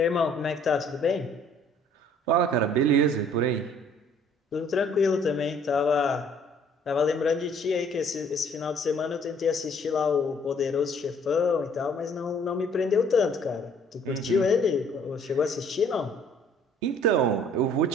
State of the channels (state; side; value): normal; both; correlation 0.58